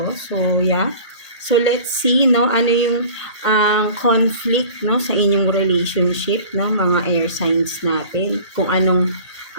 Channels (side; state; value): both; inverted; correlation -0.43